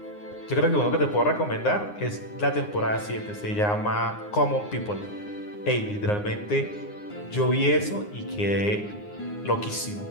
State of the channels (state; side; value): late; right; 9.7 ms